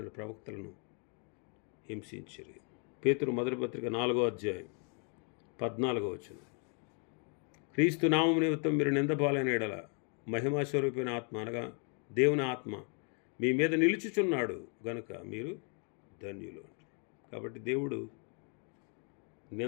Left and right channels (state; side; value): quieter; right; 39.4 dB